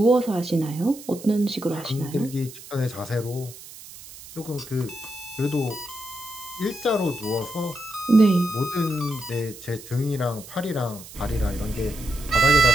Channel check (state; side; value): noise; right; hiss, 16 dB below the sound